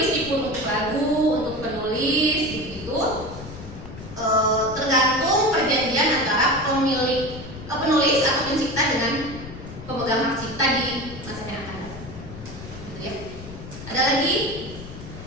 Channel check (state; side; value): noise; left; rumble, 13 dB below the sound